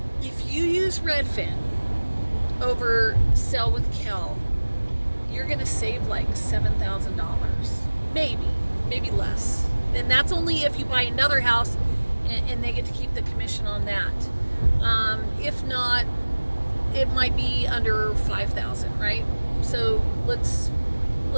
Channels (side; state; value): both; inverted; correlation -1.00